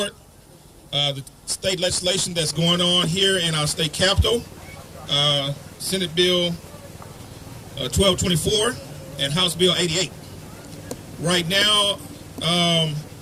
the state legislation that's going on here in our state capitol, Senate Bill 1224 and House Bill 88. Right now,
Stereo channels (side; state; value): both; identical; correlation 1.00